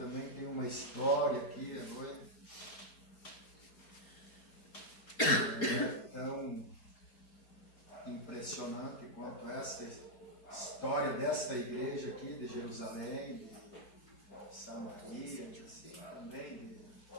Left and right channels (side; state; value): right; late; 4.4 ms